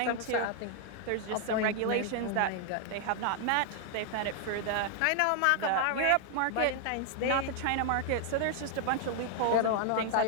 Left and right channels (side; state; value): both; different; correlation 0.00